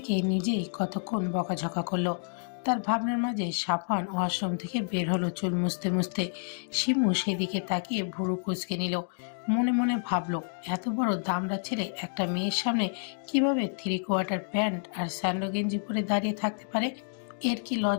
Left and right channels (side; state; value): right; silent; digital silence